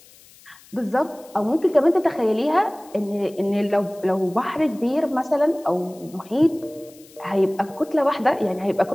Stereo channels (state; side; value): noise; left; hiss, 25 dB below the sound